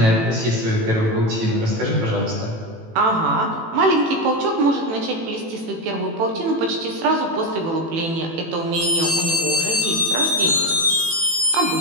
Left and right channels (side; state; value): left; late; 18 ms